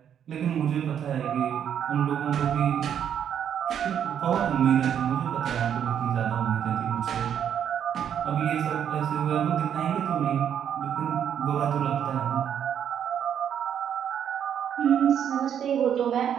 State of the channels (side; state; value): left; quieter; 8.9 dB